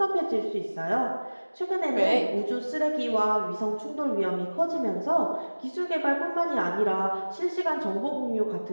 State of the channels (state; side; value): inverted; both; correlation -1.00